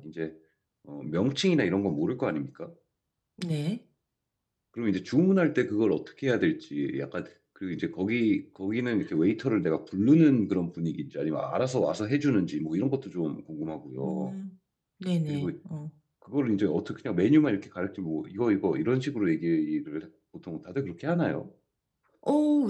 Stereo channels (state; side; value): identical; both; correlation 1.00